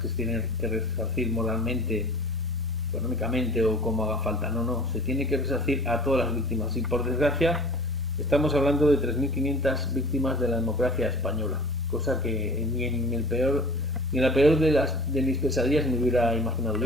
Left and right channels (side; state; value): both; normal; correlation 0.42